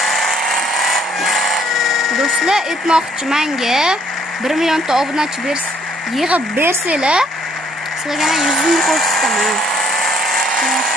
Do'stlar, aytmoqchimanki 1 millionta obunachi yig'ib bersanglar, sizlarga 100 ming ko'rsataman.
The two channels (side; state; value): both; normal; correlation 0.65